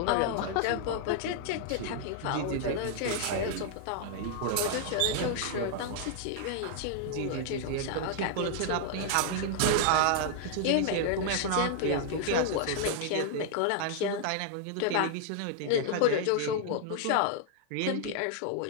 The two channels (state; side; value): different; both; correlation -0.01